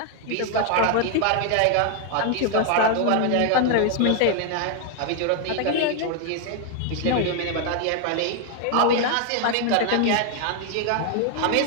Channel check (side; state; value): both; different; correlation 0.00